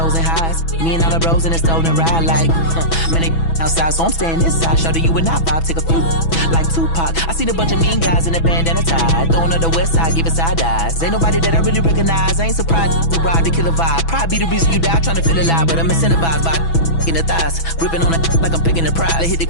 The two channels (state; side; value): late; right; 6.1 ms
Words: and highs, me and all the bros in a stolen ride like, man, they outside, so I'm staying inside. Show you and I vibe, take a few, like Tupac. I seen a bunch of mean guys in a bandana tie, throwing up the west side, giving side eyes. Ain't nobody that I really recognize, I ain't surprised to ride the killer vibe. Probably be the reason you die, trying to feel alive, but I'm incentivized by in the thighs, gripping on it like I'm picking the prize. They hit the